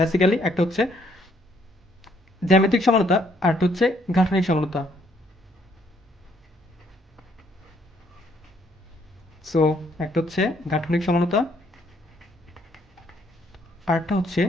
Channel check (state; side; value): normal; both; correlation 0.68